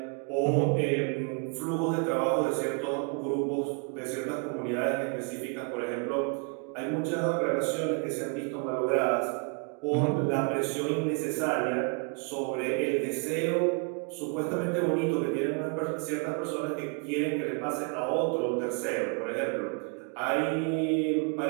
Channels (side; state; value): left; quieter; 38.2 dB